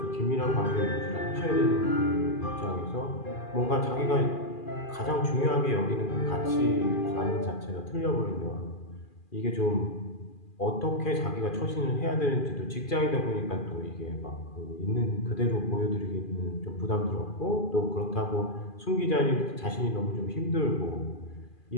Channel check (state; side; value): late; right; 2.4 ms